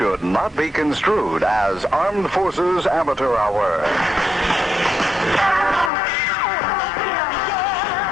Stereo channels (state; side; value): drops out; right; at 5.9 s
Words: not be construed as Armed Forces Amateur Hour.